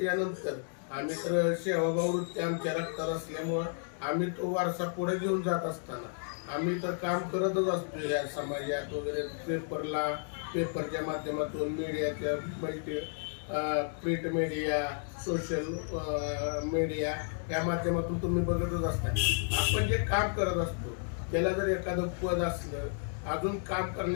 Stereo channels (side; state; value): right; silent; 56 dB below the other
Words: आम्ही तर सेवाभाव वृत्ती आमच्या रक्तात असल्यामुळं आम्ही तो वारसा पुढे घेऊन जात असताना आम्ही तर काम करतच असतो या समाजात वगैरे. पेपरच्या माध्यमातून मीडियाच्या प्रिंट मीडिया, सोशल मीडिया या माध्यमातून तुम्ही बघतच असता. आपण जे काम करत असतो त्याला जर एखादं पद असलं, अजून काम